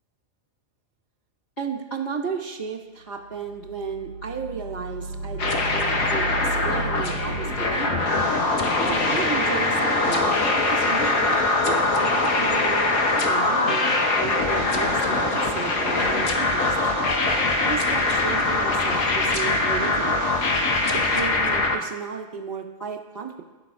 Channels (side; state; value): right; late; 5.2 ms